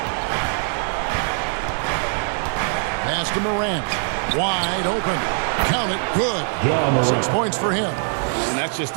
Pass to Morant. Wide open. Count it. Good. 6 points for him. And that's just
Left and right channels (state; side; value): silent; left; 60 dB below the other